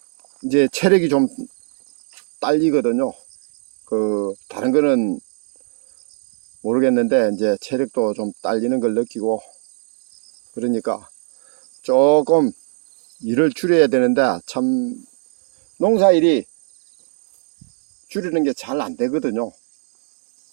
이제 체력이 좀 딸리거든요. 다른 거는 모르겠는데 이제 체력도 좀 딸리는 걸 느끼고, 그러니까 조금 일을 줄여야 되는데 참 농사일이 줄이는 게 잘 안 되거든요.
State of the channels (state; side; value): silent; left; 65 dB below the other